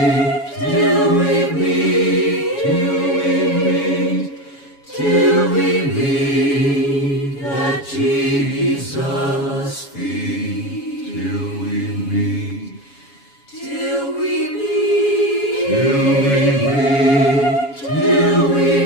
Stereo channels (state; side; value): late; right; 7.2 ms